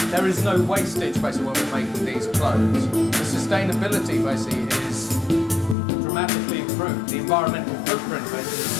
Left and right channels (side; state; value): right; drops out; at 5.8 s